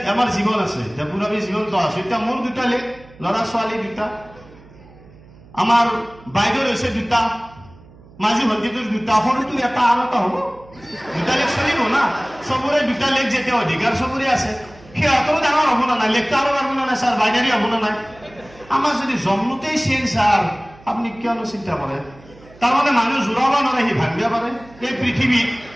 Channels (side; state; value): right; noise; hum, 23 dB below the sound